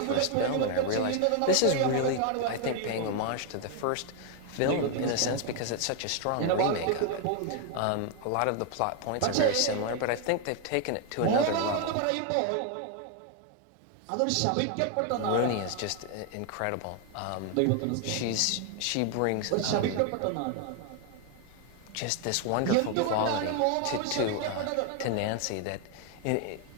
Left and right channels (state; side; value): different; both; correlation 0.01